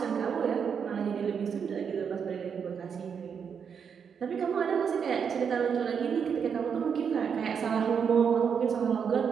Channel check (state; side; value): quieter; left; 6.9 dB